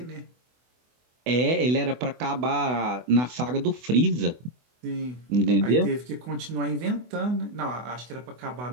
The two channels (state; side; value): late; left; 24 ms